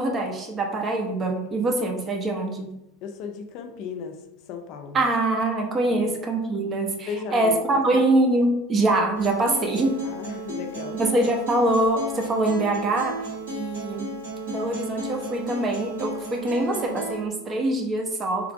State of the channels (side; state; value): both; normal; correlation 0.52